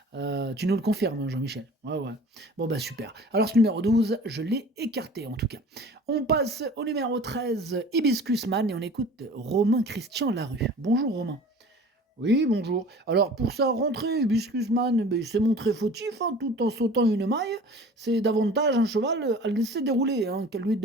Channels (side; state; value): both; normal; correlation 0.43